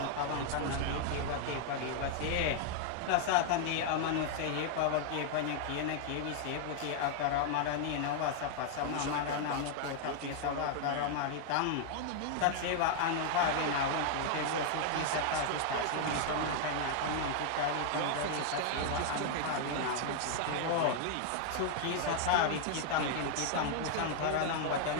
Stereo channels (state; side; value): different; both; correlation 0.00